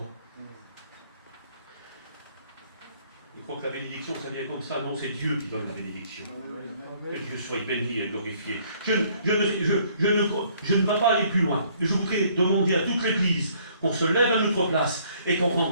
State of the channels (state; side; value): inverted; both; correlation -0.62